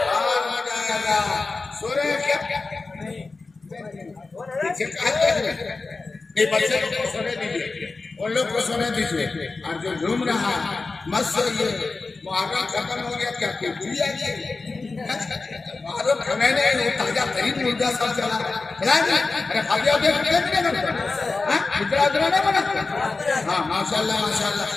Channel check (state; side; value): quieter; right; 3.8 dB